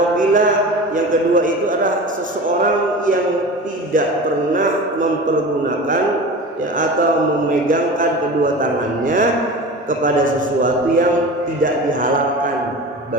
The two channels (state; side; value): normal; both; correlation 0.33